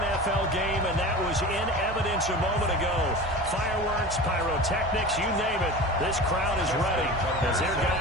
game, and that was in evidence a moment ago. Fireworks, pyrotechnics, you name it. This crowd is ready as their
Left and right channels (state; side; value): normal; both; correlation 0.33